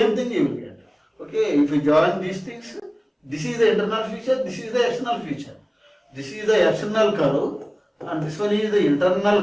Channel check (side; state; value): both; identical; correlation 1.00